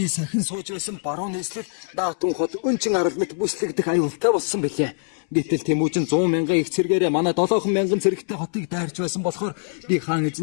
сахин сууж байсан баруун нийслэл Даатун хот өнчин арал мэт бүслэгдэх аюултай болсон бэлээ. Гэтэл Тэмүүжин 100 мянган их цэргээрээ манай 7 мянган цэрэгтэй хотыг дайрч байсан болохоор би хаан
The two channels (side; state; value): right; silent; 63 dB below the other